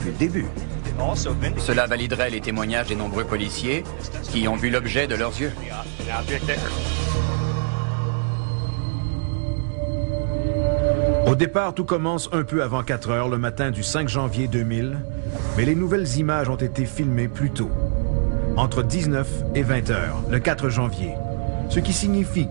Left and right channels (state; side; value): silent; left; digital silence